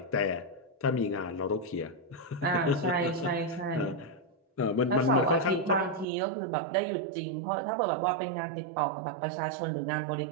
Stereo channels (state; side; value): drops out; left; at 6.1 s